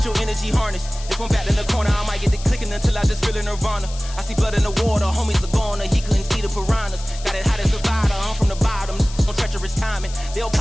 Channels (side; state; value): left; noise; hiss, 15 dB below the sound